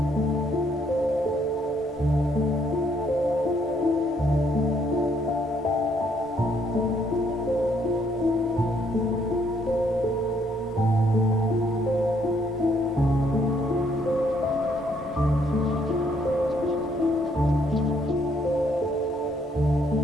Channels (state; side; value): normal; both; correlation 0.69